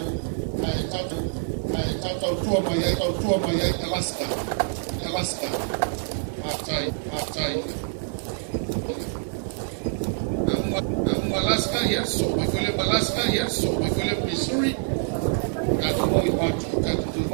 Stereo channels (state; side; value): silent; left; digital silence